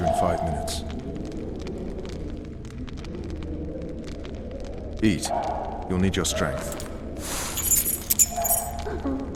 in 5 minutes. Eat. You'll need your strength.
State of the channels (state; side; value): identical; both; correlation 1.00